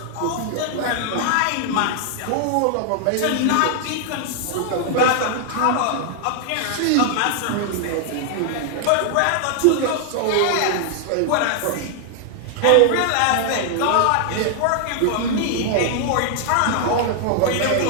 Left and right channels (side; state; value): both; different; correlation 0.00